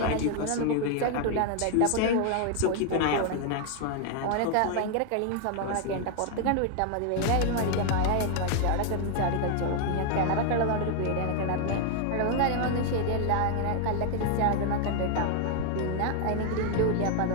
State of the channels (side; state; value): both; different; correlation 0.00